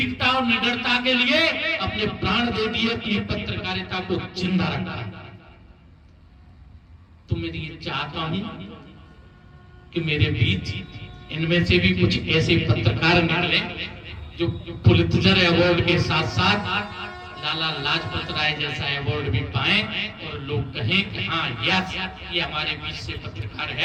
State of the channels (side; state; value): both; identical; correlation 1.00